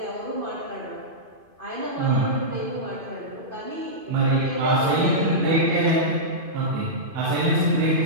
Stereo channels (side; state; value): left; late; 2.5 ms